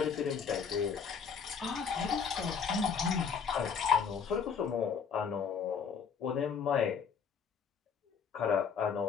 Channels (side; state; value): right; quieter; 6.5 dB